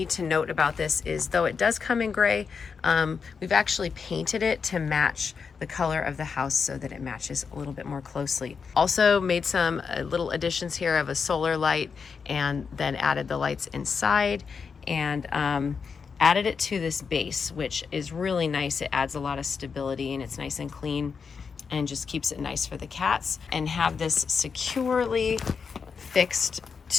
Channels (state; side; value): quieter; right; 5.7 dB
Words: to note about this is, though it does come in gray, we've actually painted it to match the color of the house so that it matches a little bit more closely. Also made some little additions here of a solar light, and then added the lights inside, and added it to this base, which is really nice. It adds a lot of stability, and it's nice and clean and just keeps it nice for the cats. And have this securely fixed